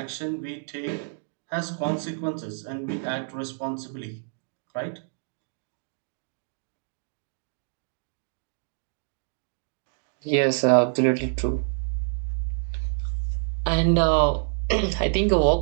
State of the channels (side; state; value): left; silent; digital silence